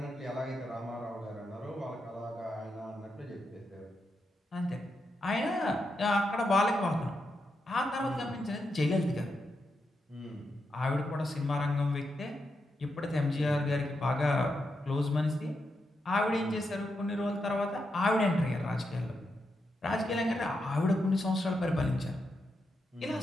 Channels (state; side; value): normal; both; correlation 0.84